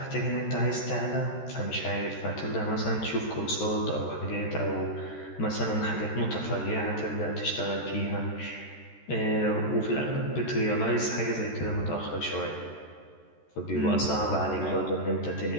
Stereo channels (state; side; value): late; right; 14 ms